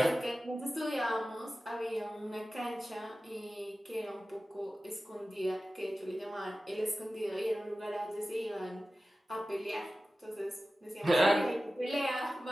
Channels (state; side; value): normal; both; correlation 0.95